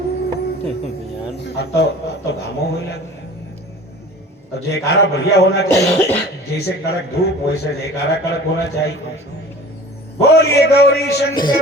अब तो घामो हो लगे। तो जयकारा बढ़िया होना चाहिए, जैसे कड़क धूप वैसे जयकारा कड़क होना चाहिए। बोलिए गौरी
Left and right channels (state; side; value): normal; both; correlation 0.42